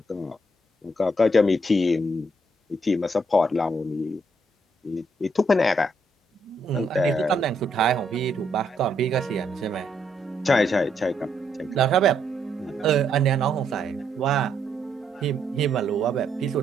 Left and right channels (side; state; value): both; normal; correlation 0.74